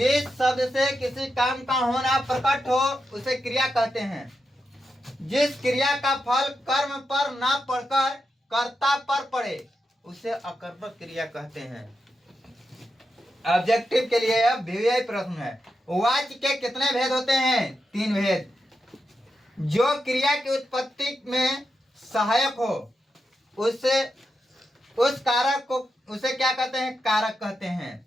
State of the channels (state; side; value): normal; both; correlation 0.87